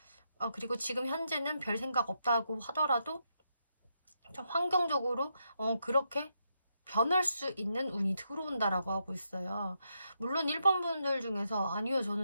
그리고 지금 현재는 별 생각 없다고 하더라도 좀 환경적으로 그렇게 변할 수 있는 운이 들어온다라고 하고 있어요. 물론 1번 분들 중에서 아니요,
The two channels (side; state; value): both; inverted; correlation -0.81